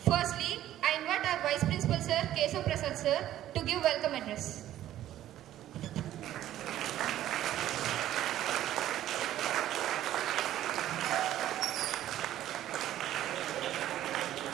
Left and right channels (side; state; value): left; quieter; 12.8 dB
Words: I invite our Vice Principal Sir, Kesav Prasad Sir, to give welcome address.